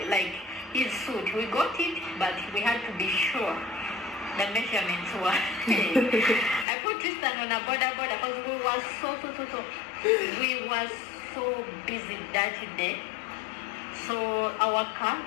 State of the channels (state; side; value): drops out; right; at 6.7 s